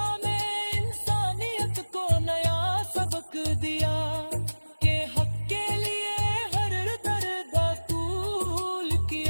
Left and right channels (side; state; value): both; inverted; correlation -1.00